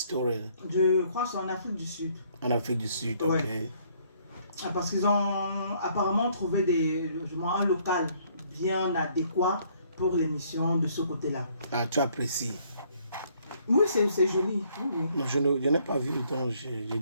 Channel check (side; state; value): both; inverted; correlation -0.65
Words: Je crois que c'est en Afrique du Sud. En Afrique du Sud, Ouais. ok. Parce qu'ils ont apparemment trouvé un local bien adéquat pour l'émission de ce côté-là. Ah, tu apprécies? Oui, c'est joli. Oui. Non, je n'ai pas vu, donc je